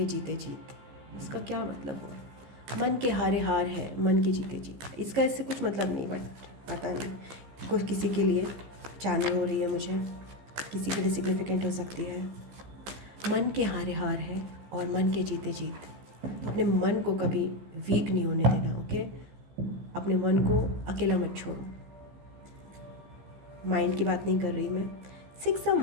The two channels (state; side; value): late; left; 15 ms